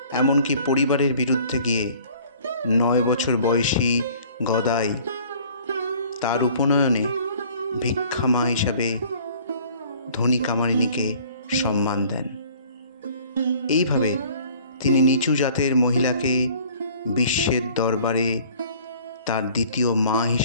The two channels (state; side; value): inverted; both; correlation -0.52